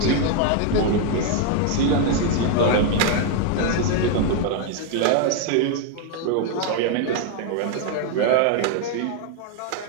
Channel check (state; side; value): different; both; correlation 0.00